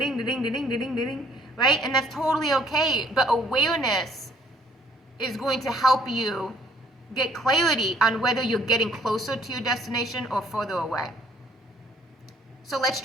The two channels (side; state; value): both; normal; correlation 0.61